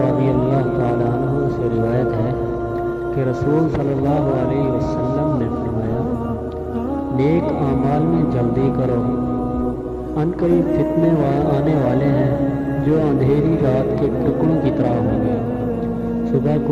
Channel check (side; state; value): both; identical; correlation 1.00